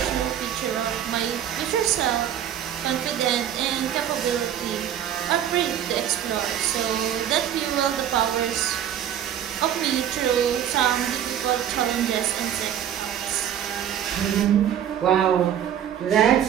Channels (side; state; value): left; quieter; 10.0 dB